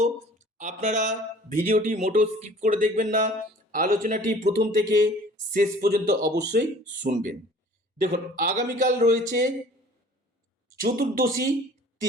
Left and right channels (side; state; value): both; normal; correlation 0.50